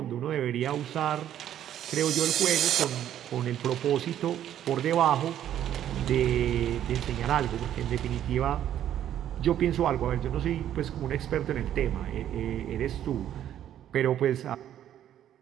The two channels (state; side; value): quieter; left; 11.0 dB